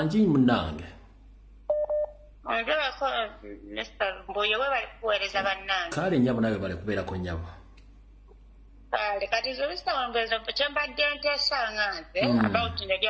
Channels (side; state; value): both; identical; correlation 1.00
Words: munnange kale nnyabo nawe bale kubeerako nnyabo kati zobisawangezo kyembadde nteesanga nze about